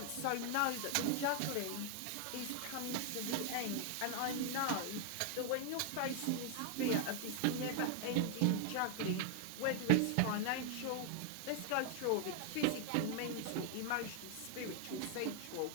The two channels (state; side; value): different; both; correlation 0.00